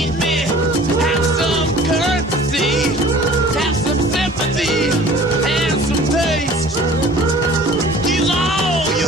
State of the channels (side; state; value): both; normal; correlation 0.47